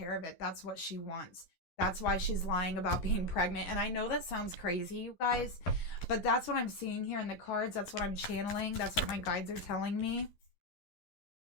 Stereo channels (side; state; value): right; late; 11 ms